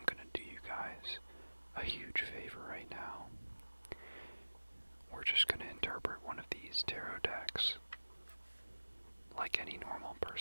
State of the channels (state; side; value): inverted; both; correlation -1.00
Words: going to do you guys a huge favor right now. We're just going to interpret one of these tarot decks like any normal